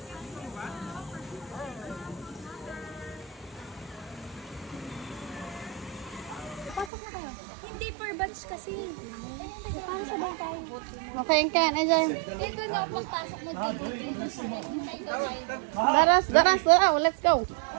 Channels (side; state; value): left; drops out; at 6.9 s